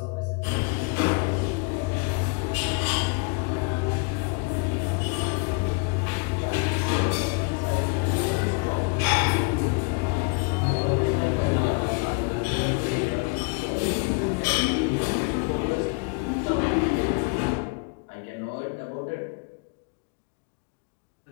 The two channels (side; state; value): right; quieter; 30.3 dB